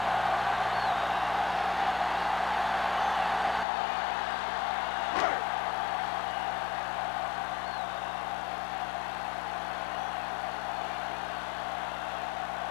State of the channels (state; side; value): drops out; right; at 3.7 s